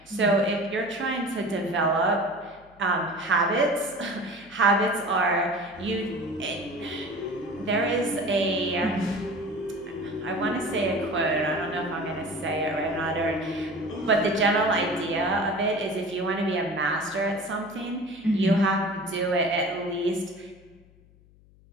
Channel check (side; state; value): left; noise; hum, 27 dB below the sound